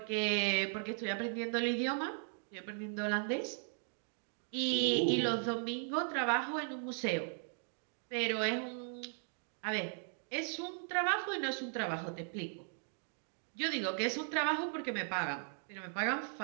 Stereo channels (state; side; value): silent; left; 53 dB below the other